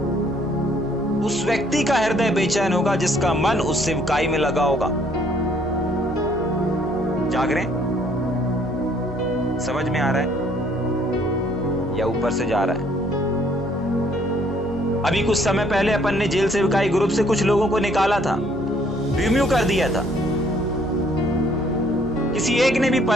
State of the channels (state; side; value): noise; right; hum, 18 dB below the sound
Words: उस व्यक्ति का हृदय बेचैन होगा जिसका मन उस सेवकाई में लगा होगा। जाग रहे, समझ में आ रहा है या ऊपर से जा रहा है? अभी कुछ समय पहले अपन ने जेल सेवकाई ग्रुप से कुछ लोगों को निकाला था, रिम्यू कर दिया था। किसी एक ने भी